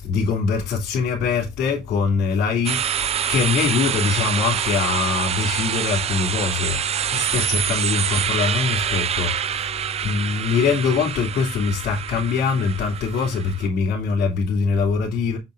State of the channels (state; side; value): normal; both; correlation 0.42